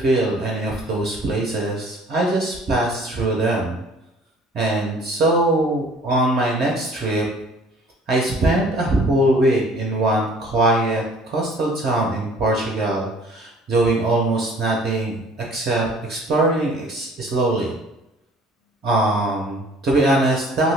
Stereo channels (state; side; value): normal; both; correlation 0.52